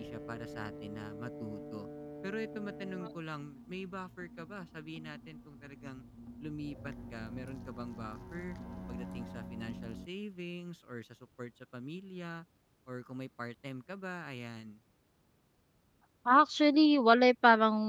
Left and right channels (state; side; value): identical; both; correlation 1.00